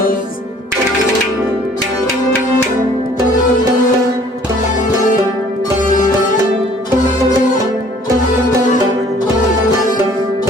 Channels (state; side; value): normal; both; correlation 0.55